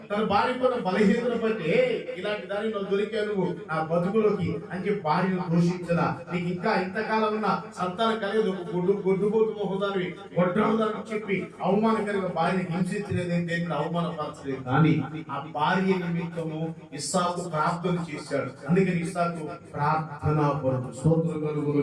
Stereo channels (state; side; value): identical; both; correlation 1.00